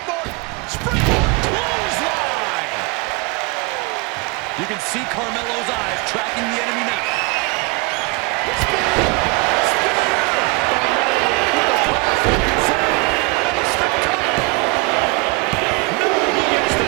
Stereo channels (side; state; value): left; quieter; 28.3 dB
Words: Springboard! Clothesline! You can see Carmelo's eyes tracking the enemy now.